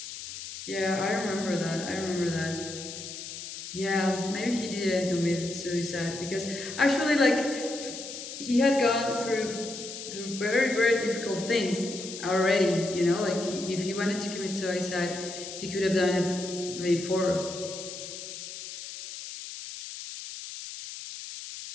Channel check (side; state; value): left; noise; hiss, 10 dB below the sound